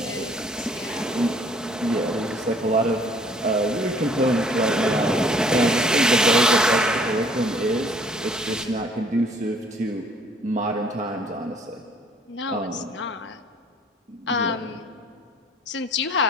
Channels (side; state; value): both; normal; correlation 0.57